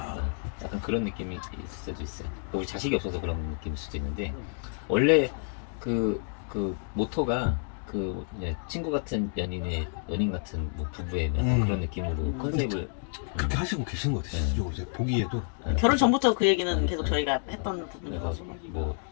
약간 그런 느낌이 있을 수도 있어요. 우리 자식이 없어서 그런 느낌일 수도 있는데 원래 그 모토가 그냥 친구 같은 연인 같은 뭐 부부의 약간 그런 느낌으로 컨셉을 그렇게 하시고 계신 것 같아요. 실제로 이제 보기에도. 결혼 전부터 그 얘기는 계속 저희가 했던 그래서 부분이라서. 뭐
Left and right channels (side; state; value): right; silent; 58 dB below the other